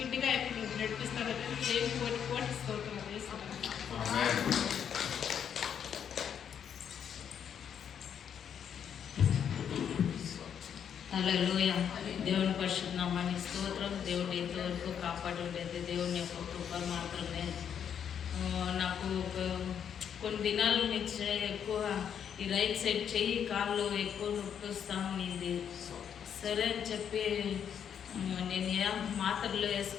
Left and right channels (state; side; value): quieter; right; 8.3 dB